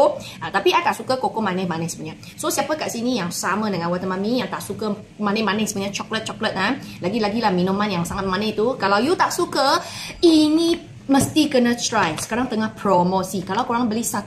Tapi I tak suka koko manis-manis punya. So siapa kat sini yang sama dengan waktu Mami yang tak suka manis-manis punya coklat-coklat lagi-lagilah minuman yang sangat manis tu. Kalau you tak suka, ini mesti kena try. Sekarang tengah promosi. Kalau korang beli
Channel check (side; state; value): both; identical; correlation 1.00